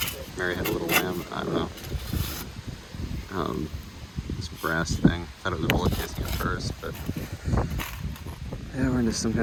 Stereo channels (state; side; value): identical; both; correlation 1.00